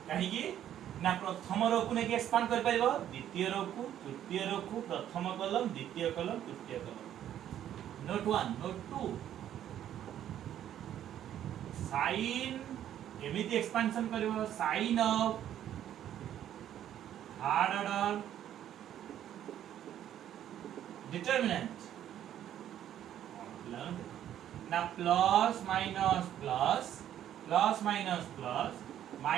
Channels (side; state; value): left; quieter; 11.0 dB